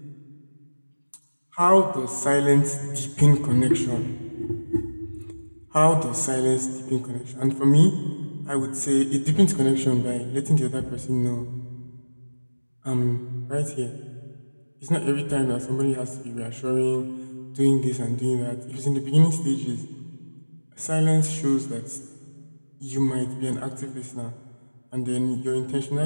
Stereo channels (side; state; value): both; inverted; correlation -1.00